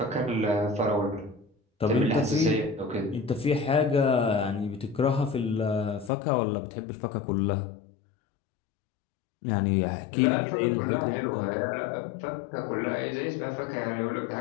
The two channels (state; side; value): drops out; right; at 6.1 s